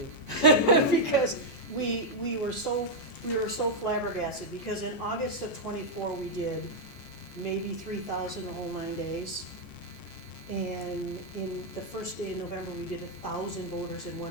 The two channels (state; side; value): late; right; 14 ms